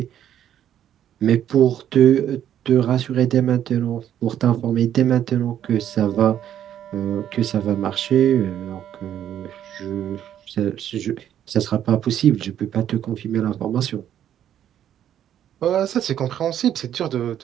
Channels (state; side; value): quieter; left; 10.5 dB